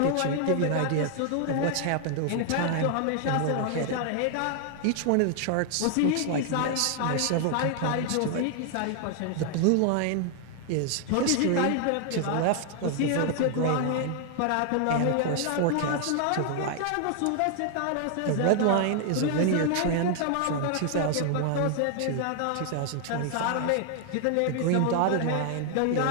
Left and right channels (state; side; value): different; both; correlation 0.00